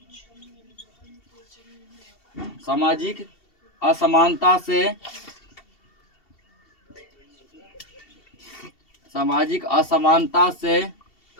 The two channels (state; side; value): late; right; 2.7 ms